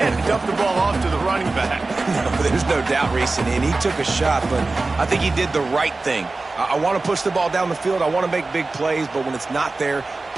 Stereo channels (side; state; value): left; quieter; 3.4 dB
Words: dumped the ball off to the running back. No, there's no doubt, Reese, and he took a shot, but I think he did the right thing. I want to push the ball down the field. I want to make big plays, but when it's not there,